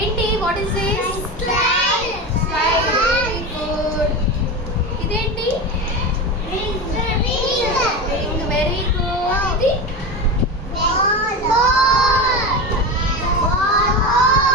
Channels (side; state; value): both; normal; correlation 0.23